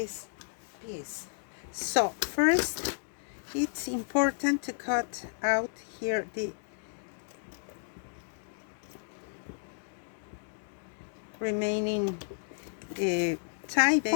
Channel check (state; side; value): silent; right; digital silence